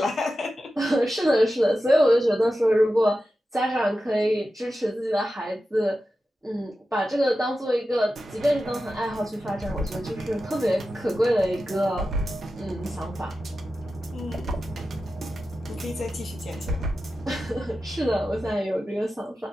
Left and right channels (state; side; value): normal; both; correlation 0.92